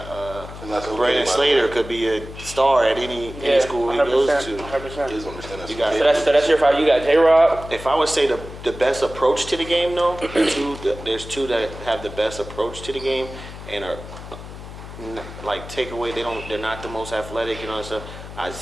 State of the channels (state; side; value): noise; left; hum, 13 dB below the sound